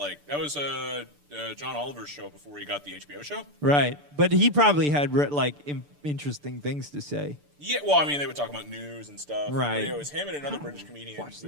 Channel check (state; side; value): late; left; 6.8 ms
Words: that was John Oliver's show before he got the HBO show. Right, but he probably had interesting things to say. Yeah, well, I mean, they would talk about news and stuff. Right. But, it was him and another British comedian watch the